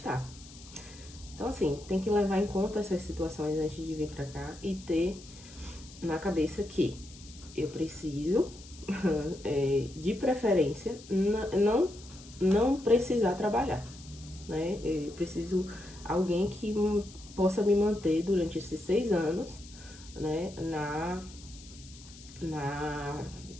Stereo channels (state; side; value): noise; left; hiss, 19 dB below the sound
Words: Então, assim, tem que levar em conta essas situações antes de vir para cá e ter na cabeça que eu preciso, de preferência, não precisar trabalhar, né? Eu preciso alguém que possa me manter durante esses 6 anos, né,